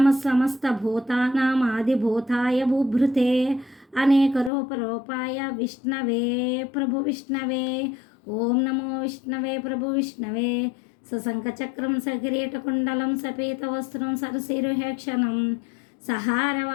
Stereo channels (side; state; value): right; drops out; at 4.5 s